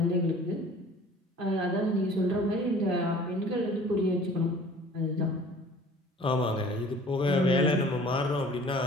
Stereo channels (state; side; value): normal; both; correlation 0.49